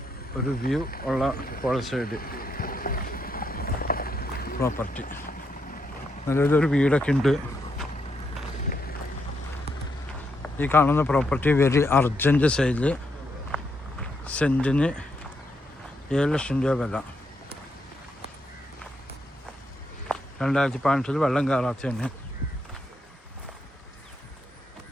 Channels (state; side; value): normal; both; correlation 0.79